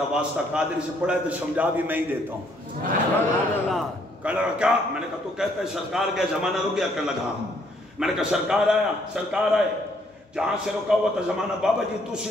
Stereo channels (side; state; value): both; normal; correlation 0.68